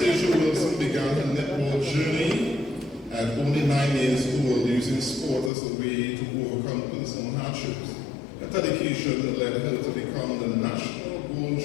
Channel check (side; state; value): right; drops out; at 5.5 s